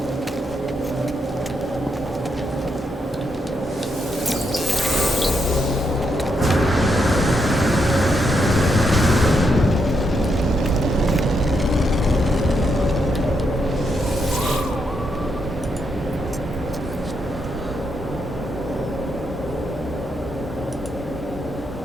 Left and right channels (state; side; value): normal; both; correlation 0.80